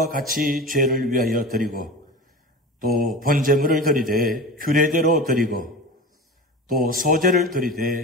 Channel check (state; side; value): normal; both; correlation 0.31